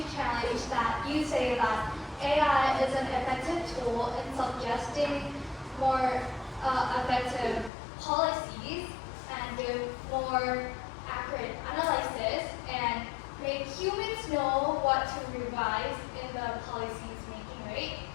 challenge that you say that AI is an effective tool in suggesting more effective policies and do more accurate analysis and make humans know what to revise in the policies making, right?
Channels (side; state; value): right; drops out; at 7.7 s